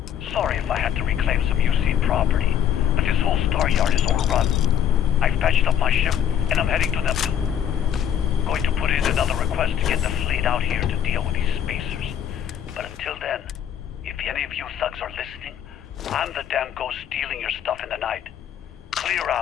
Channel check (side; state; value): right; quieter; 9.4 dB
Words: Sorry if I had to reclaim some UC property, but this whole Staryard is overrun. I've patched up my ship, and I'm heading to Neptune. Going to put in another request to get the fleet out here to deal with these spacers. But until then, if any of you thugs are listening, I'm the damn ghost stealing your stuff in the night. Clear